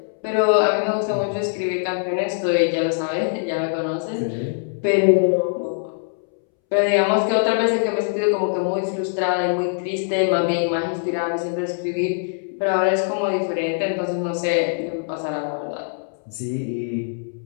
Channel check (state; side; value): silent; right; 64 dB below the other